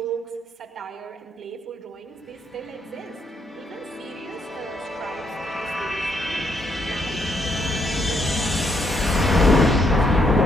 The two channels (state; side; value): normal; both; correlation 0.74